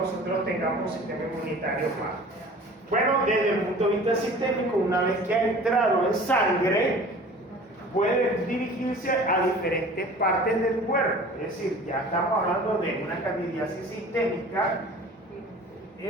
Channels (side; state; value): both; normal; correlation 0.44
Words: tengamos un sistema inmunitario bajo. Bueno, desde el punto de vista sistémico, una vez que ha entrado en sangre, puede dirigirse a diferentes partes del cuerpo. Es decir, ya estamos hablando de una candidiasis sistémica